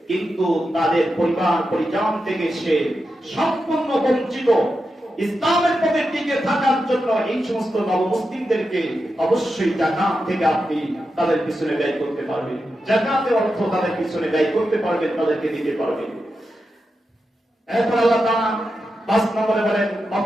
কিন্তু তাদের পরিবার পরিজন থেকে সে সম্পূর্ণ বঞ্চিত, ইসলামের পথে টিকে থাকার জন্য এই সমস্ত নবমুসলিমদেরকে অবশ্যই যাকাত থেকে আপনি তাদের পিছনে ব্যয় করতে পারবেন। যাকাতের অর্থ তাদের পিছনে ব্যয় করতে পারবেন, তাদেরকে দিতে পারবেন। এরপর আল্লাহ তাআলা 5 নম্বরে বলেন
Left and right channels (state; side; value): normal; both; correlation 0.89